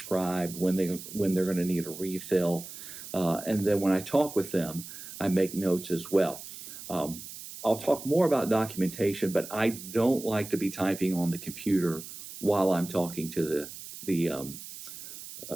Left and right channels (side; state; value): right; noise; hiss, 12 dB below the sound